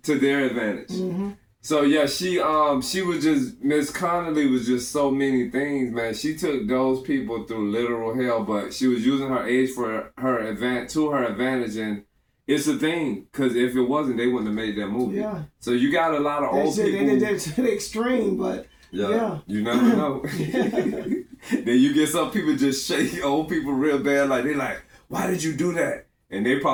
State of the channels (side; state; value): both; identical; correlation 1.00